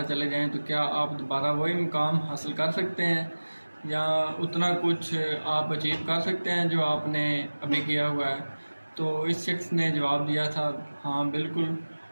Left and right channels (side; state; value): both; inverted; correlation -1.00